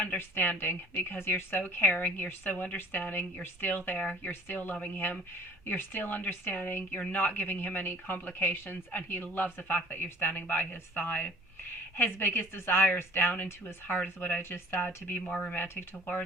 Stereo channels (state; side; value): normal; both; correlation 0.49